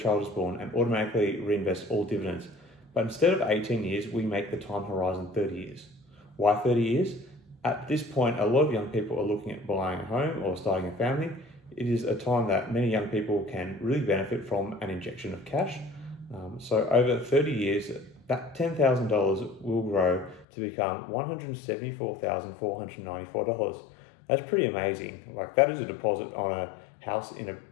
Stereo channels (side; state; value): right; drops out; at 20.5 s